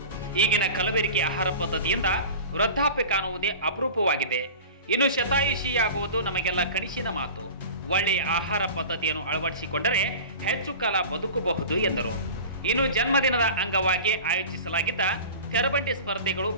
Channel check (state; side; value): inverted; both; correlation -0.36